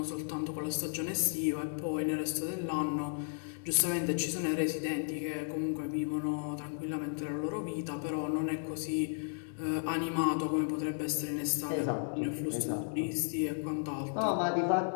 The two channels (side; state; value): right; silent; digital silence